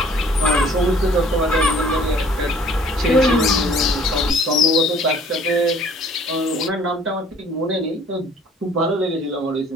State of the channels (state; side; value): normal; both; correlation 0.55